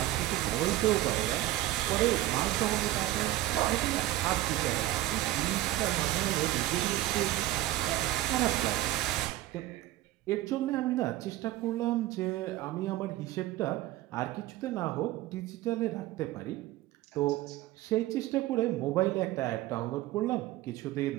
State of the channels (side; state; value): left; quieter; 15.6 dB